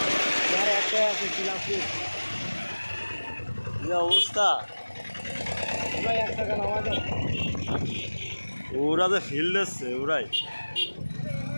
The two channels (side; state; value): both; inverted; correlation -1.00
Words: একটাই আছে, যে অবস্থা। ওরা যে ফিল্ড এসছে, ওরাই